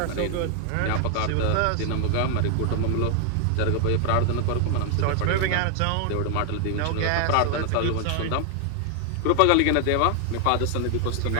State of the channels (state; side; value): different; both; correlation 0.00